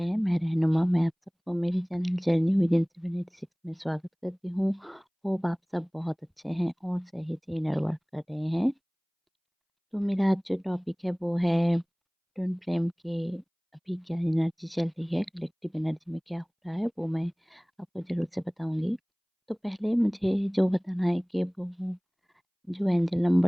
हैं। मैं रहनुमा, मैं आप सबको मेरे चैनल जर्नी विदिन 786 में स्वागत करती हूँ। होप आप सब बहुत अच्छे हैं और सही से इनर वर्क कर रहे हैं। तो मेरा आज जो टॉपिक है वो है ट्विन फ्लेम के अभी क्या एनर्जी चल रही है, कलेक्टिव एनर्जी में क्या हो रहा है, वो मैं आपको ज़रूर से बताऊँगी। तो पहले मुझे जो बताना है कि वो जो एंजल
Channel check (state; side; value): identical; both; correlation 1.00